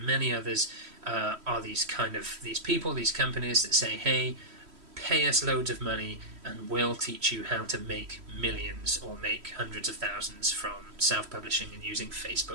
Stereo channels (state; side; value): late; left; 3.1 ms